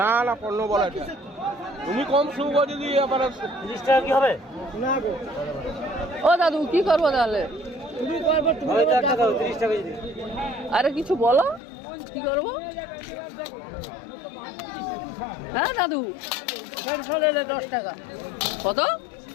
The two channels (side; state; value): right; drops out; at 11.6 s